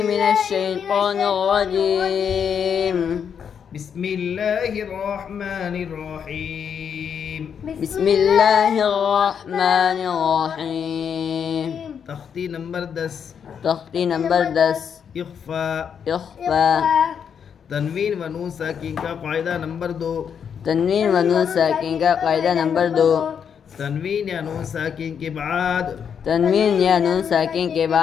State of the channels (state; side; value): quieter; right; 7.5 dB